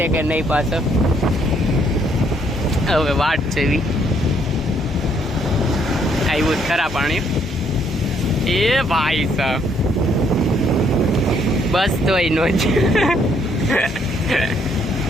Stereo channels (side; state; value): both; normal; correlation 0.69